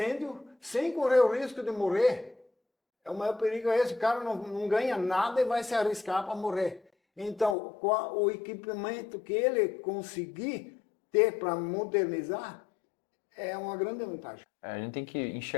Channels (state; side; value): drops out; right; at 7.6 s